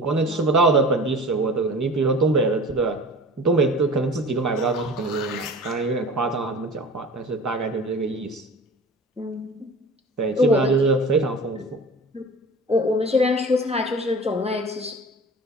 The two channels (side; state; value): both; normal; correlation 0.39